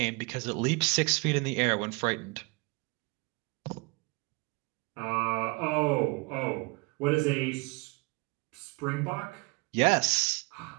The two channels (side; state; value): left; quieter; 27.6 dB